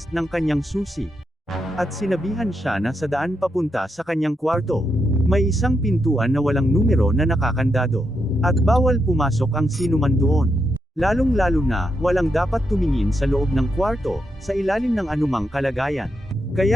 ng kanyang susi. At sinabihan siya na sa daan papunta sa kanyang kwarto. May isang pintuan na walang numero na nakakandado. At bawal pumasok ang sinuman doon. Lalong-lalo na, walang dapat tumingin sa loob ng kwarto, sa ilalim ng anumang kalagayan.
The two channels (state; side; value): normal; both; correlation 0.83